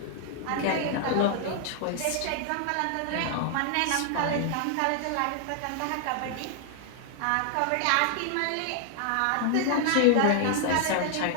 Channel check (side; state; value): both; different; correlation 0.00